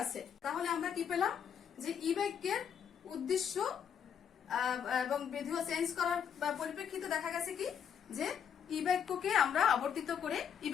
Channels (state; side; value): quieter; right; 8.0 dB